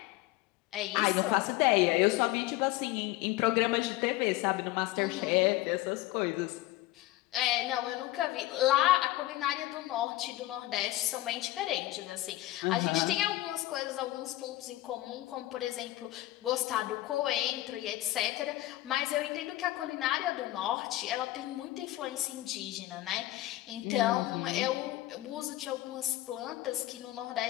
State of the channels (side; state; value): right; quieter; 16.7 dB